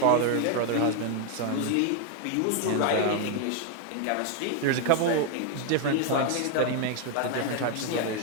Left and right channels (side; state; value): both; different; correlation 0.00